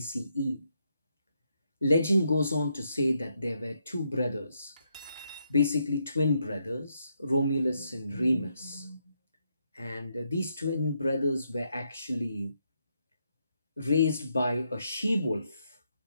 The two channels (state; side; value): inverted; both; correlation -0.78